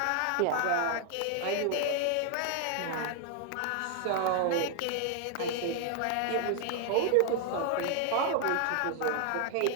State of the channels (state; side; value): different; both; correlation 0.00